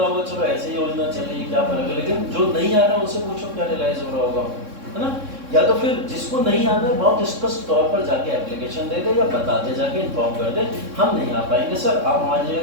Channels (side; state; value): left; late; 3.6 ms